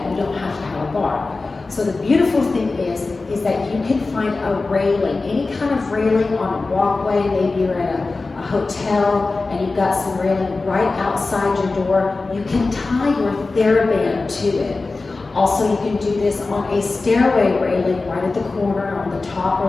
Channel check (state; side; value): quieter; right; 3.6 dB